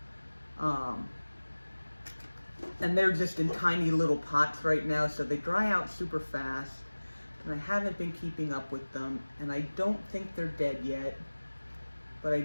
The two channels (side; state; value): both; inverted; correlation -1.00